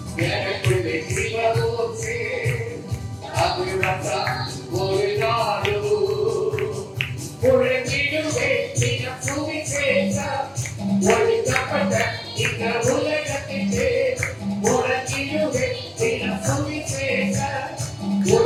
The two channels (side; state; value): both; identical; correlation 1.00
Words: எனக்குள்ளே சிவபூசே அது வச்சா ஓடினாலு உழைத்திடுவே தினம் சுவிசேஷ ஒழிக்கப்பட்ட இந்த உலகத்திலே உழைத்திடுவே தினம் சுவிசேஷ